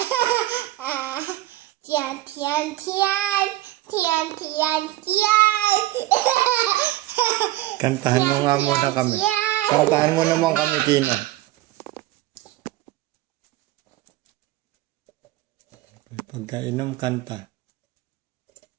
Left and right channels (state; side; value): quieter; left; 16.3 dB